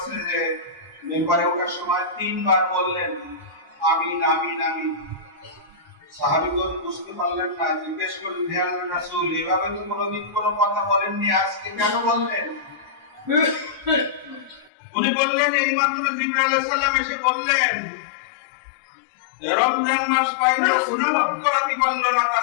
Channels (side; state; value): right; drops out; at 14.7 s